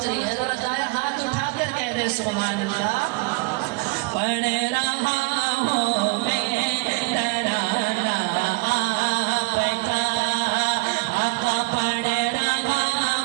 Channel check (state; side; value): quieter; left; 25.9 dB